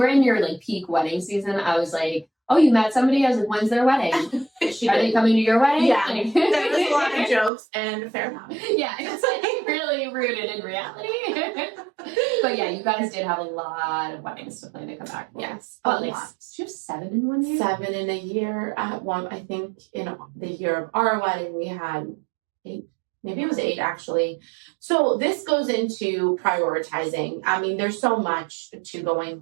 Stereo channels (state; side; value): drops out; left; at 7.5 s